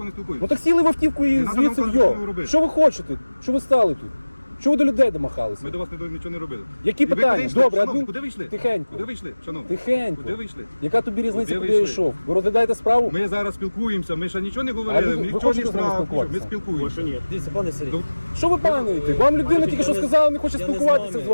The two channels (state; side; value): inverted; both; correlation -1.00